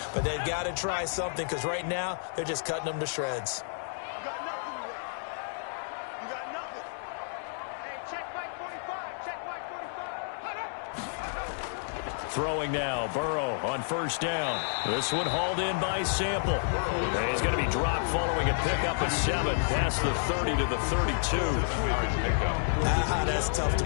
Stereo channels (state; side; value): silent; right; digital silence